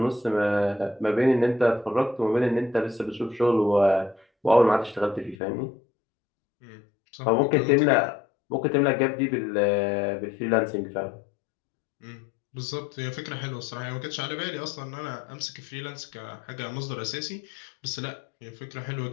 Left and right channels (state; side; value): drops out; right; at 5.4 s